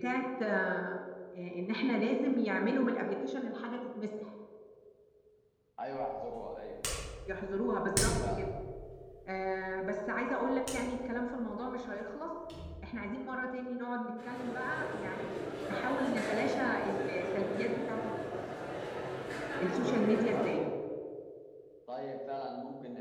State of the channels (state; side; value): identical; both; correlation 1.00